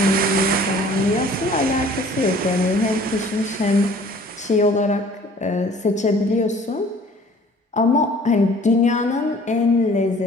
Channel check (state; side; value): normal; both; correlation 0.51